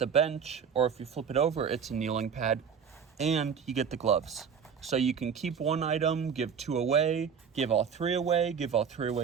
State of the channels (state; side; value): quieter; left; 6.9 dB